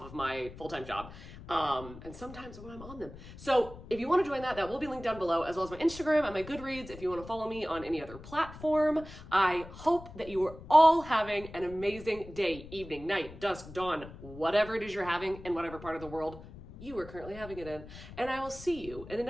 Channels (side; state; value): left; noise; rumble, 15 dB below the sound